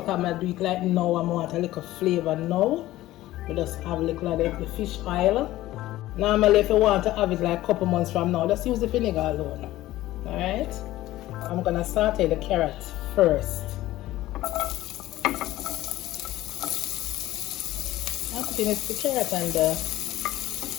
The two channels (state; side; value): quieter; right; 15.9 dB